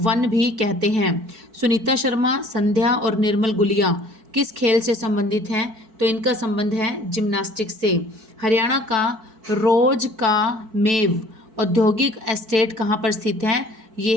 भी कहते हैं। सुनीता शर्मा, संध्या और निर्मल गुलिया किस खेल से संबंधित हैं, तो इनका संबंध है जिम्नास्टिक्स से। हरियाणा का रोज का मेव औद्योगिक एस्टेट कहाँ पर स्थित है,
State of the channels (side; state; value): left; late; 4.5 ms